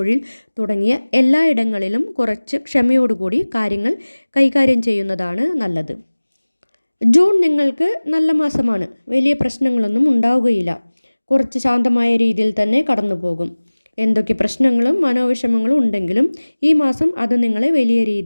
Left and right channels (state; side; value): inverted; both; correlation -1.00